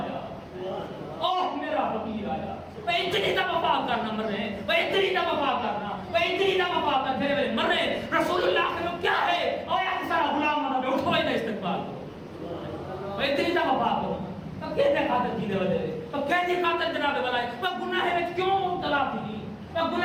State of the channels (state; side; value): identical; both; correlation 1.00